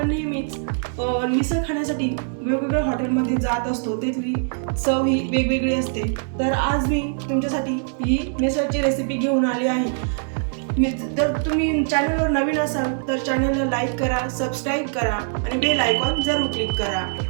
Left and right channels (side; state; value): left; silent; digital silence